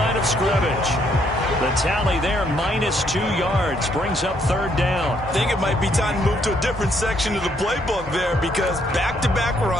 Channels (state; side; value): normal; both; correlation 0.70